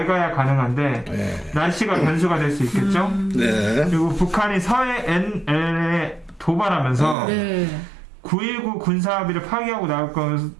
가능한데 예. 날씨가 변수가 될 수 있겠죠. 네. 그리고 북한이 서해 NLL에 도발하면서 네. 9.19 군사합의를 파기하고 나올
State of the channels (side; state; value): left; drops out; at 7.2 s